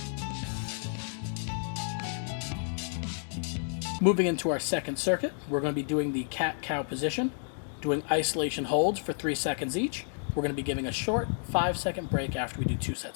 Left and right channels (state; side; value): silent; right; digital silence